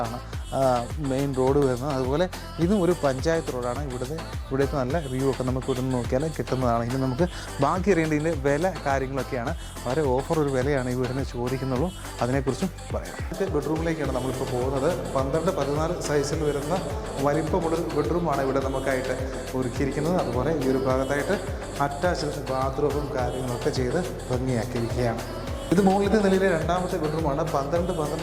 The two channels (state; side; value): identical; both; correlation 1.00